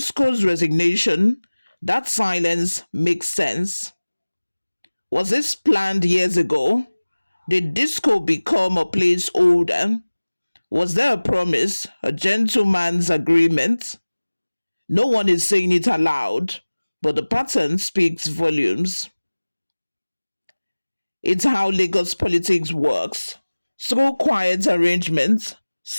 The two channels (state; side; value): inverted; both; correlation -1.00